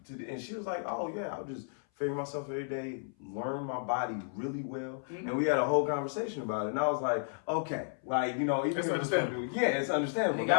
to? And she was like, oh yeah, I'll just figure myself every day, learn my body really well. And we had a whole conversation about it. And I was like, okay, like, you know, even it's understandable. Yeah, it's understandable.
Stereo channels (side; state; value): right; silent; 56 dB below the other